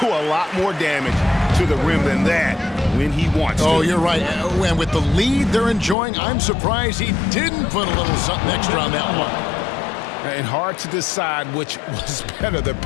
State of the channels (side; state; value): right; drops out; at 6.0 s